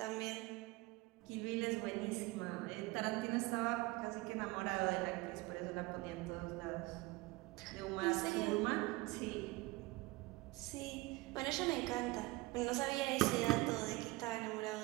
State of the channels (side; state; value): left; quieter; 21.7 dB